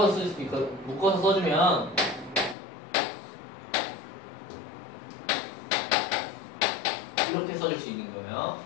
쓸 수도 있고 묶어서 써주면 이렇게 써줄 수 있는 거예요.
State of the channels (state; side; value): drops out; right; at 2.6 s